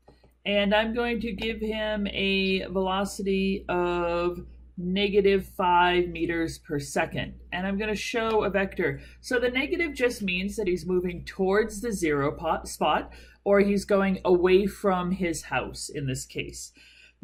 And I'm going to give him a velocity of -5 meters per second. And I'm going to show a vector. So the negative just means that he's moving towards the zero spot, or he's going away from his house in this case.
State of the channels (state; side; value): identical; both; correlation 1.00